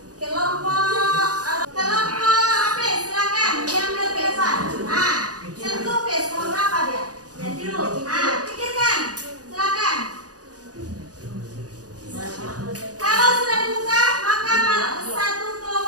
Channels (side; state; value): left; late; 0.67 ms